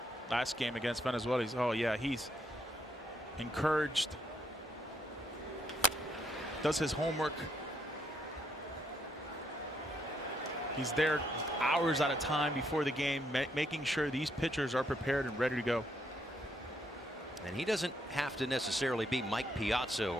last game against Venezuela. He's encouraged, does his homework. He's there hours at a time before the game, making sure these pitchers are prepared and ready to go. And he doesn't have to necessarily be Mike Piazza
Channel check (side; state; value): both; normal; correlation 0.74